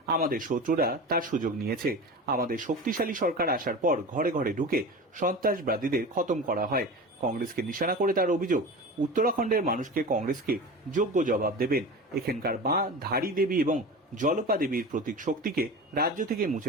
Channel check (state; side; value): normal; both; correlation 0.31